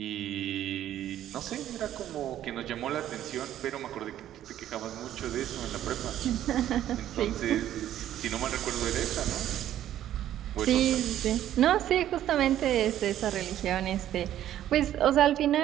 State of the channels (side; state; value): left; quieter; 11.9 dB